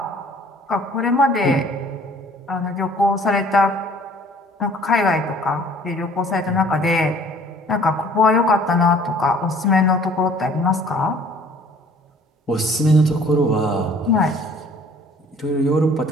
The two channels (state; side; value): normal; both; correlation 0.54